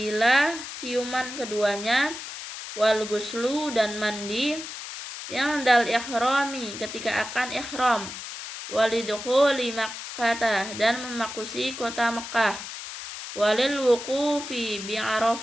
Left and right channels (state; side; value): noise; left; hiss, 9 dB below the sound